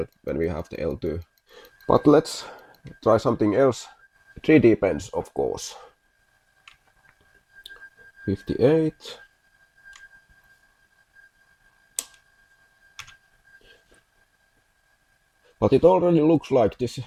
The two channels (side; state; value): both; identical; correlation 1.00